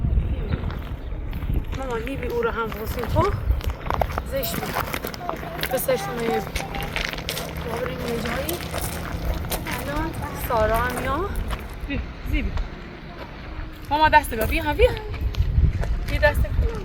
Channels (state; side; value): identical; both; correlation 1.00